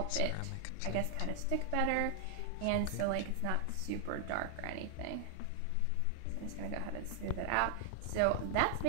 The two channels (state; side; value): different; both; correlation 0.00